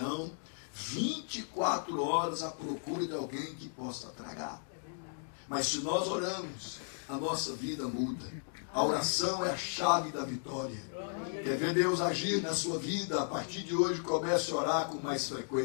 24 horas à procura de alguém que possa tragar. Mas se nós oramos, a nossa vida muda. A oração é a chave da vitória. Quer ver Deus agir na sua vida? A partir de hoje, comece a orar com mais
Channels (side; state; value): right; silent; digital silence